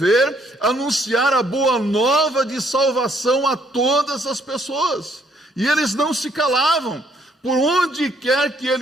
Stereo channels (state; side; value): normal; both; correlation 0.67